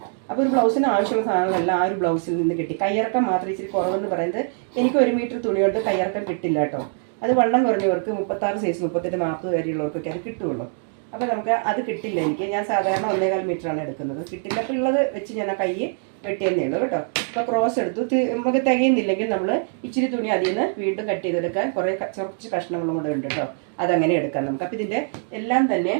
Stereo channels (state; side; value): silent; left; 62 dB below the other